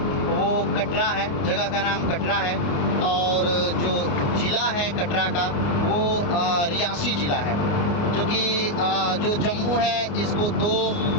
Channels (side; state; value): right; late; 28 ms